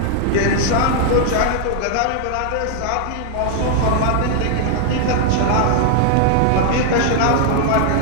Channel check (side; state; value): both; different; correlation 0.00